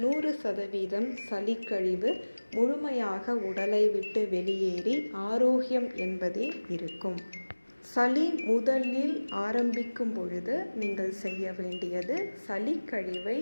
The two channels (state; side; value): inverted; both; correlation -1.00